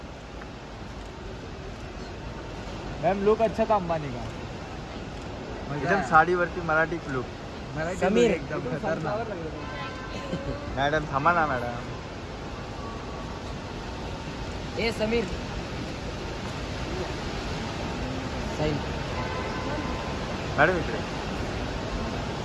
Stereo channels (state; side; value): identical; both; correlation 1.00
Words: मैम लुक अच्छा था अंबानी का। एकदम साडीवरती मराठी लुक. समीर एकदम खतरनाक। मॅडम थांबा ना मॅडम. ए समीर साई मॅडम इकडे.